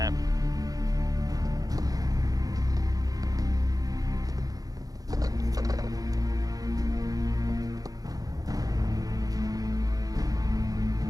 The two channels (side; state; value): left; late; 0.18 ms